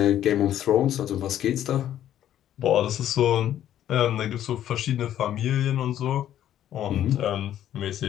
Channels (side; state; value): right; quieter; 11.4 dB